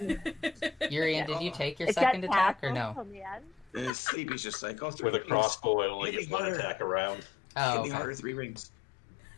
Urian, did you take your It's second got attack or tassels no? on the end. In his sleep, he's just like, oh, 3 With a rings. crossbow, I only Hit get me one harder. attack around. Oh, Hit me okay. harder, 3 rings.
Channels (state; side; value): drops out; right; at 3.9 s